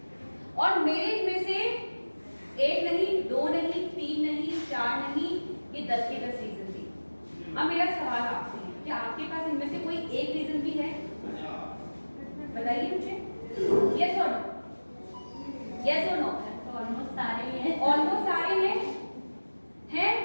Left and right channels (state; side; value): inverted; both; correlation -1.00